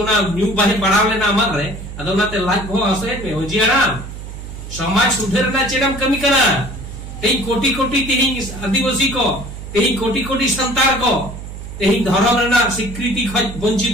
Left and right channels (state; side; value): noise; right; hum, 11 dB below the sound